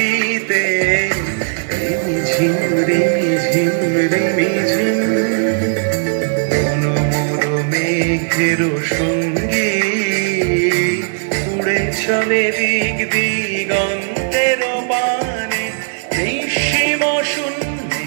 রিমিঝিম রিমিঝিম রিমিঝিম মেঘের সঙ্গী উড়ে চলে দিক দিগন্তের পানে নিঃসীম শূন্যে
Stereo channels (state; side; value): silent; left; digital silence